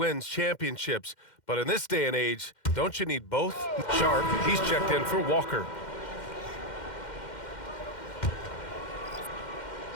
championships, but in this day and age, don't you need both? Sharp, he's checked in for Walker.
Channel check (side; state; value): right; late; 2.1 ms